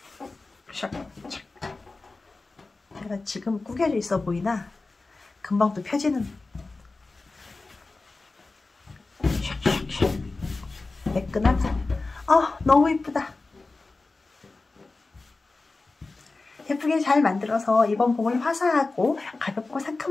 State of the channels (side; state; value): right; quieter; 3.5 dB